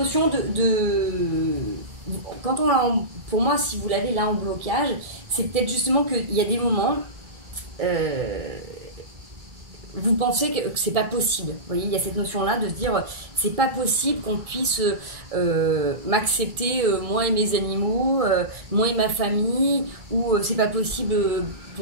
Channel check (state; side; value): late; left; 1.6 ms